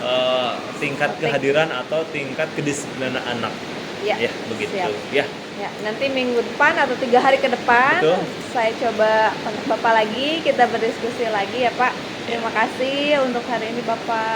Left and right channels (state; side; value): identical; both; correlation 1.00